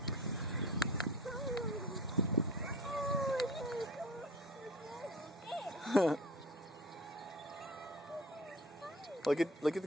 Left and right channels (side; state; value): both; normal; correlation 0.41